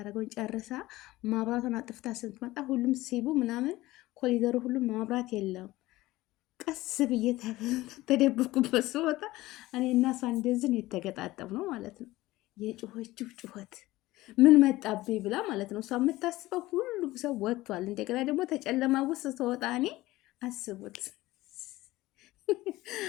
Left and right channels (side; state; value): right; quieter; 18.0 dB